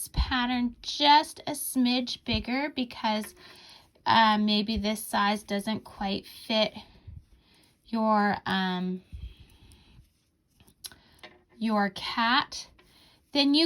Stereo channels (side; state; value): both; identical; correlation 1.00